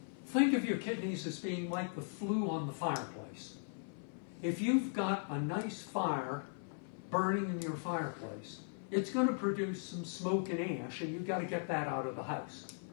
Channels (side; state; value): right; silent; 52 dB below the other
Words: Think of your kidneys as being like the flue on the fireplace. If you've got a nice fire burning in your fireplace, it's going to produce some smoke and ash, and you've got to get that out of the house.